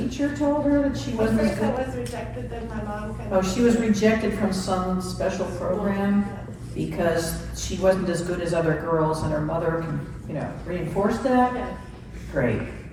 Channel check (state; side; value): identical; both; correlation 1.00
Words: told her that she wasn't as First good. I was rejected, then my mom kind Oh, of. she was rejected from some special program because she wasn't as good as other girls, and her mother, reinforced that? Yeah. Great.